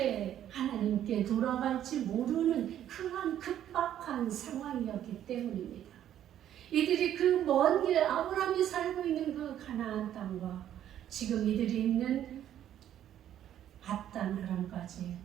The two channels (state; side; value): quieter; left; 11.0 dB